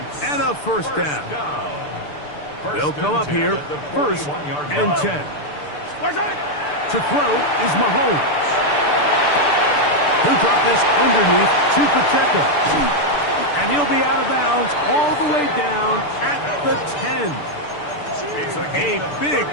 and a first down. They'll come up here 1st and 10. To throw is Mahomes. He'll drop this underneath to Pacheco. And he'll be out of bounds all the way down at the 10. A big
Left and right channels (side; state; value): right; late; 6.8 ms